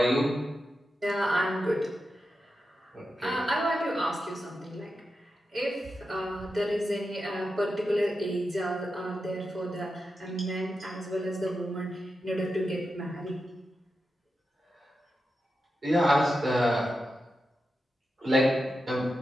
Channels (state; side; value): normal; both; correlation 0.89